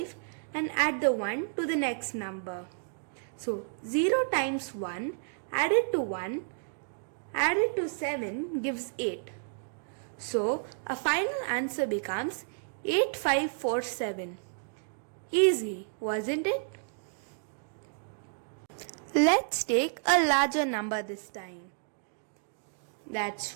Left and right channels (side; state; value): left; silent; digital silence